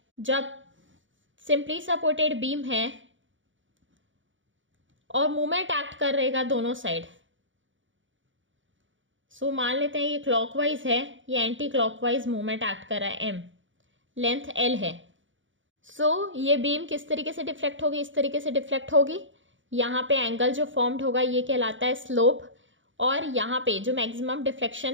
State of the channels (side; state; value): left; late; 0.56 ms